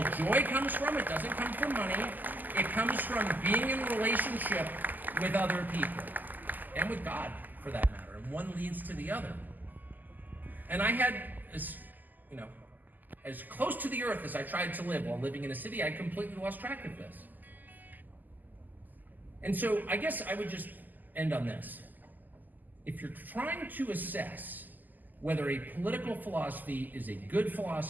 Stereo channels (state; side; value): late; left; 0.085 ms